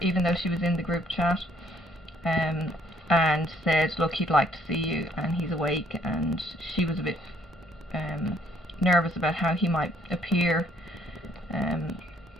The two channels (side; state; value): both; normal; correlation 0.66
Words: even though she was in the group chat, and said, look, he'd like to see you, and he's awake. And she was a bit nervous about how he might appear